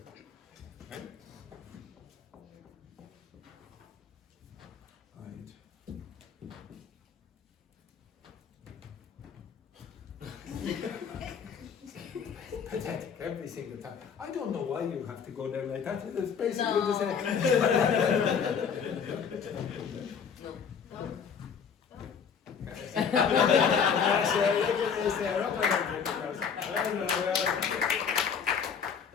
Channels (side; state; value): right; quieter; 6.8 dB